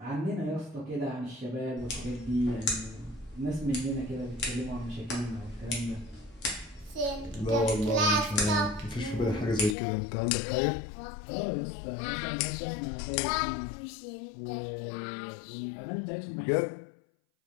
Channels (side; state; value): right; drops out; at 9.8 s